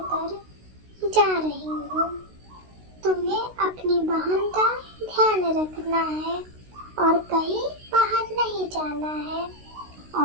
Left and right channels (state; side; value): late; left; 16 ms